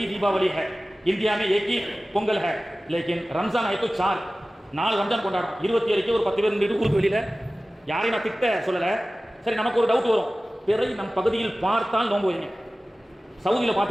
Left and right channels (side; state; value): both; normal; correlation 0.96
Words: दीपावली है, इंडिया में एक ही பொங்கல் है, लेकिन रमजान है तो 4 ரம்ஜான் கொண்டாடும். 27க்கு ஒரு 10 பேர் நின்று ஊருக்கு வெளியில் யாரையும் நான் திட்ட சொல்லலை. சரி, நமக்கு ஒரு டவுட் வரும், பிறை நம் பகுதியில் பார்த்தால் நோன்பு வைங்க. சவுதியில்